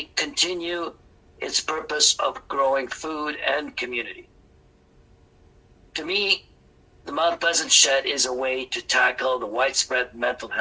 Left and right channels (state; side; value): identical; both; correlation 1.00